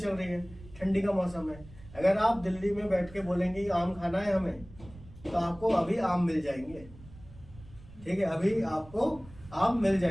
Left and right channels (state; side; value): noise; right; rumble, 19 dB below the sound